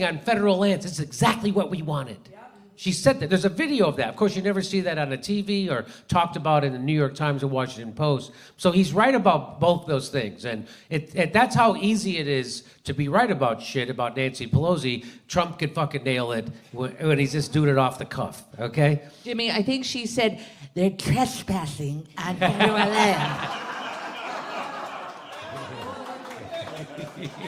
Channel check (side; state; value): both; identical; correlation 1.00